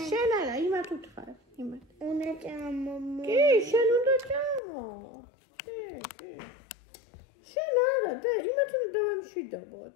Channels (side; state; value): right; drops out; at 4.6 s